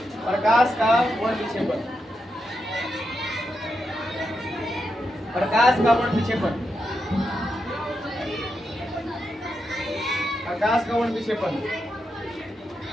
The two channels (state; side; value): normal; both; correlation 0.85